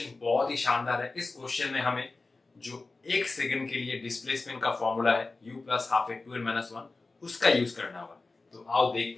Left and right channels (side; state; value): right; quieter; 3.6 dB